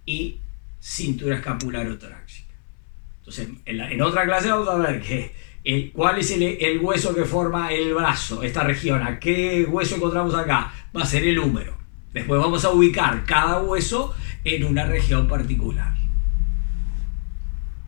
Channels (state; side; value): silent; right; 64 dB below the other